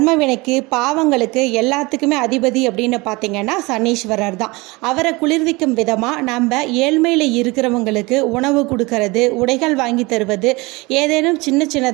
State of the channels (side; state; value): left; quieter; 24.1 dB